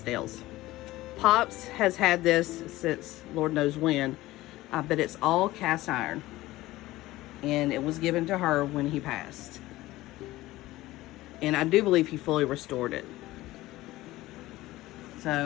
Pops has had this since Lord knows when. But it's all cast iron. and it was given to her when he passed. And I do believe he fully restored it.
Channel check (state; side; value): quieter; right; 17.4 dB